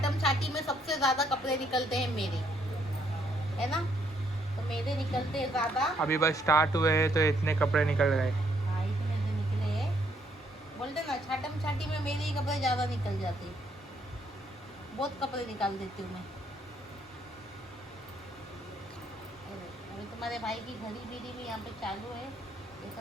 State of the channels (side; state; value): both; normal; correlation 0.70